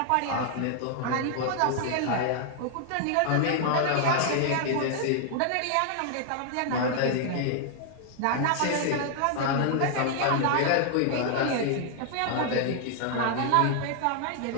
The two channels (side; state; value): both; different; correlation 0.00